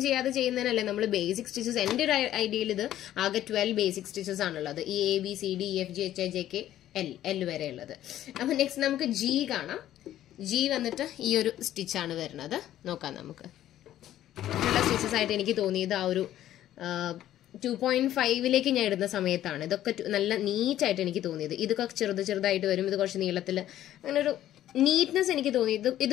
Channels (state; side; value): quieter; right; 12.6 dB